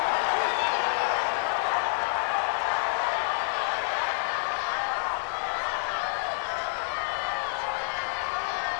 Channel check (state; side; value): silent; right; digital silence